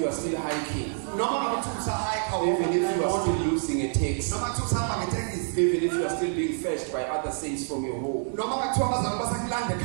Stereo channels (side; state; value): left; silent; digital silence